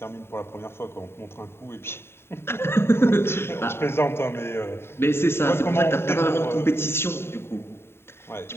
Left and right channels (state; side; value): late; right; 0.12 ms